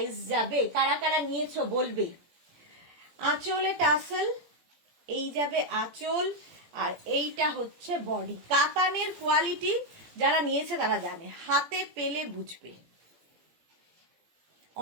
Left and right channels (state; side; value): late; left; 17 ms